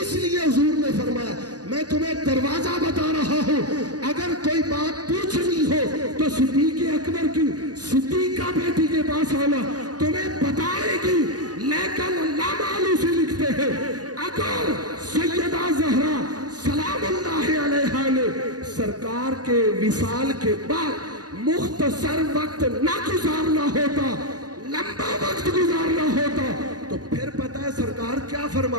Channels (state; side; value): late; left; 0.68 ms